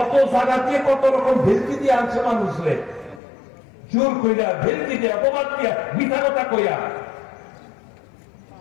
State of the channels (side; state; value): right; drops out; at 3.2 s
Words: জায়গাতে কত রকম ভেলকি দিয়ে আনছে মানুষরে, জোর কইরা ভেলকি দিয়ে অপবাদ দিয়া মিথ্যা কথা কইয়া।